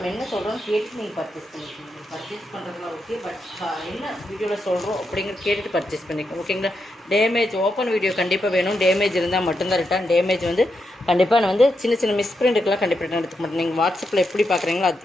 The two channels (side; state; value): both; normal; correlation 0.84